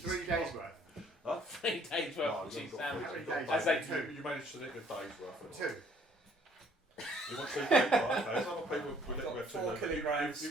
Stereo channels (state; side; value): normal; both; correlation 0.61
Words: days worth? 3 days worth No, of you cheese haven't got sandwiches. three. As they Two. You managed to nick a day's worth. 2. You want 2 days, right? There's other people I've with got it. 4 kilograms